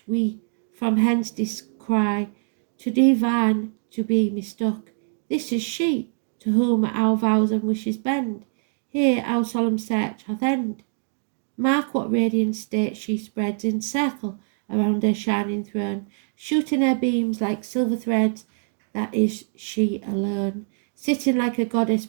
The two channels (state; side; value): silent; left; 63 dB below the other